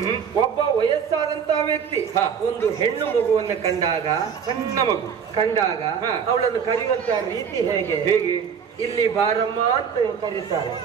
ಒಬ್ಬ ವಯಸ್ಸಾದಂತಹ ವ್ಯಕ್ತಿ ಒಂದು ಹೆಣ್ಣು ಮಗುವನ್ನು ಕಂಡಾಗ, ಸಣ್ಣ ಮಗು ಕಂಡಾಗ ಅವಳನ್ನು ಕರೆಯುವಂತಹ ರೀತಿ ಹೇಗೆ? ಹೇಗೆ? ಇಲ್ಲಿ ಬಾರಮ್ಮ ಅಂತ ಕರೀತಾರೆ,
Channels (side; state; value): left; quieter; 7.1 dB